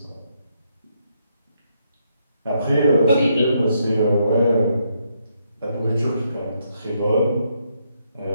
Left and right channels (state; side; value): inverted; both; correlation -0.76